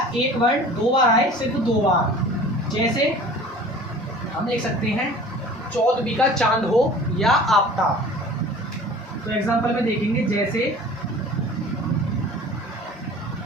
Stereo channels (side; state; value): both; normal; correlation 0.44